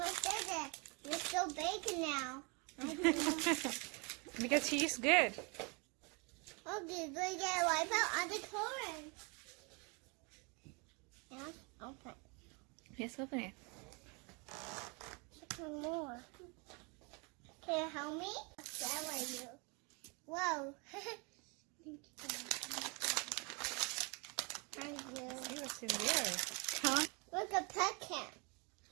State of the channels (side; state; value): left; quieter; 31.6 dB